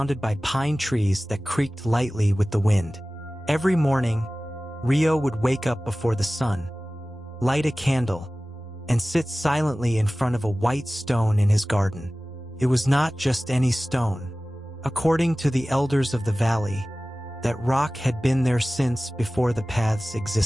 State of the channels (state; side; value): normal; both; correlation 0.97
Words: by pine trees that creaked lightly with the wind. Every morning, Rio would wake up before the sun, light a candle, and sit silently in front of a white stone in his garden. It was not just any stone. According to the elders of the valley, that rock had been there since before the paths